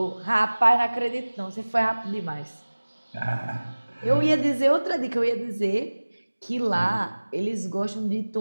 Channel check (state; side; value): inverted; both; correlation -1.00